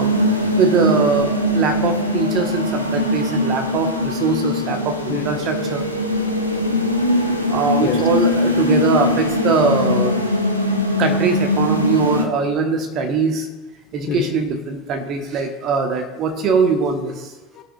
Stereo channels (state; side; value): normal; both; correlation -0.08